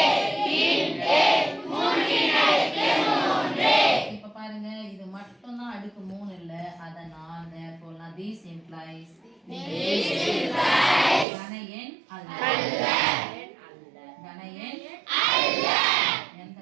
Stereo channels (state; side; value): drops out; left; at 11.2 s